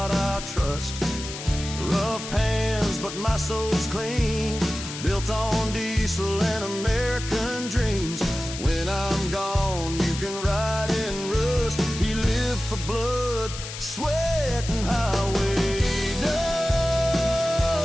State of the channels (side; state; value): left; noise; hiss, 9 dB below the sound